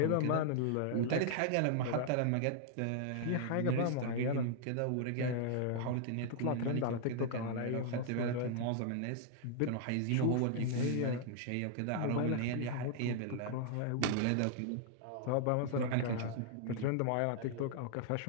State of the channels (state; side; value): different; both; correlation -0.01